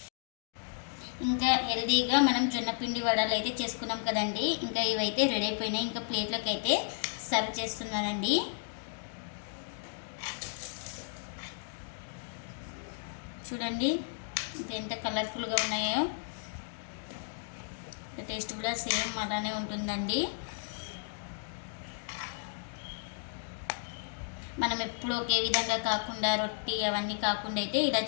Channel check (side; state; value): right; silent; digital silence